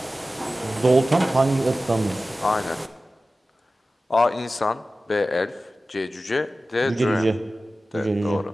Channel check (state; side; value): normal; both; correlation 0.95